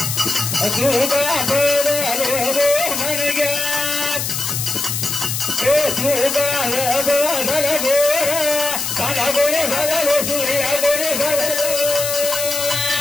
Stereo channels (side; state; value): left; noise; hiss, 2 dB below the sound